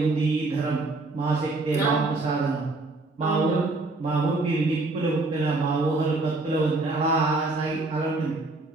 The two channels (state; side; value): quieter; left; 3.2 dB